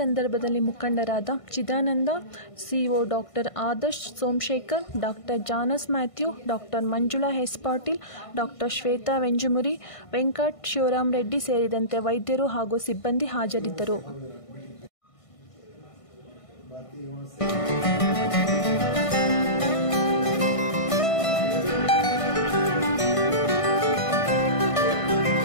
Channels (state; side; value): late; right; 1.5 ms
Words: ಮುಖಂಡರಾದ Chidananda, CEO doctor Adarsh Somashekhar, doctor Janus Mathew, doctor Manjula S Patil, doctor Shweta Venjumuri, Venkat Shivaram Reddy ಸೇರಿದಂತೆ ವೈದ್ಯರು ಹಾಗೂ ಸಿಬ್ಬಂದಿ ಹಾಜರಿದ್ದರು.